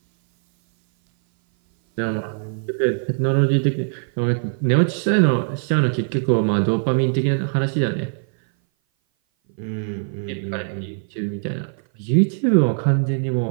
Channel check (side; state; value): left; silent; 59 dB below the other